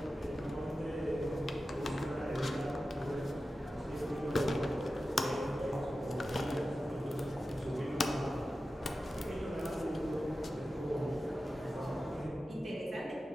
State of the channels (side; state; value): both; normal; correlation 0.93